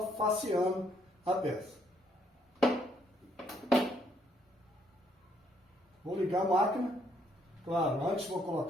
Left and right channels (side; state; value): both; normal; correlation 0.70